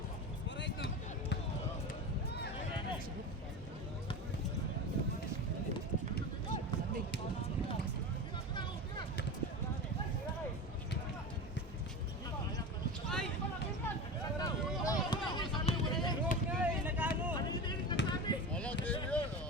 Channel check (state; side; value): normal; both; correlation 0.27